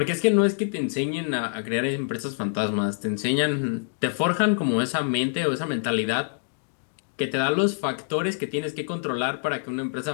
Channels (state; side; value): silent; right; digital silence